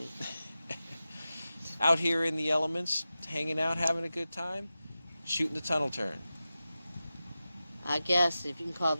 Out here in the elements, hanging out, having a good time, shooting the tunnel turn. I guess if you can call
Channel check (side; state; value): both; inverted; correlation -0.94